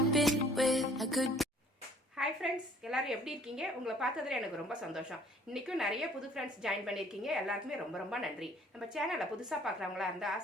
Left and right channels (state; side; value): normal; both; correlation 0.56